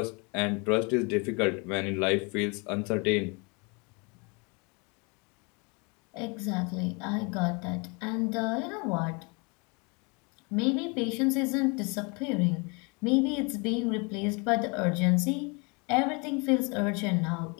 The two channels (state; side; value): quieter; right; 31.1 dB